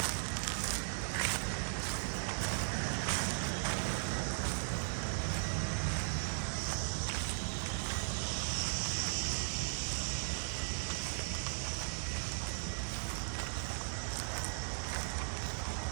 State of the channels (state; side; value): silent; left; digital silence